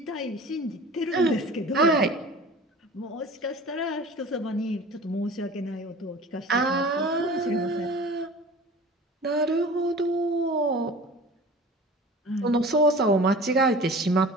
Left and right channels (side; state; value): both; normal; correlation 0.41